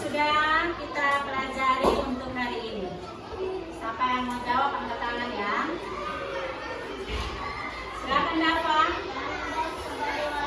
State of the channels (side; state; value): both; identical; correlation 1.00